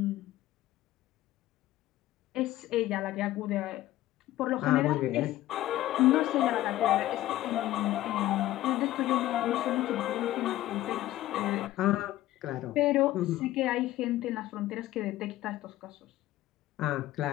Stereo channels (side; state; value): right; quieter; 15.1 dB